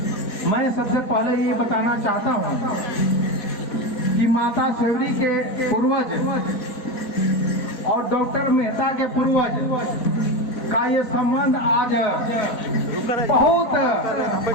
मैं सबसे पहले ये बताना चाहता हूँ कि माता सबरी के पूर्वज और डॉक्टर मेहता के पूर्वज का ये संबंध आज बहुत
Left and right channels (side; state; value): right; late; 4.9 ms